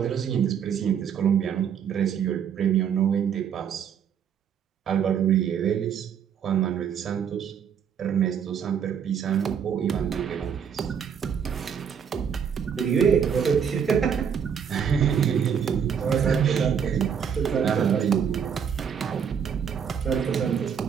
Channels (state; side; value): quieter; left; 7.6 dB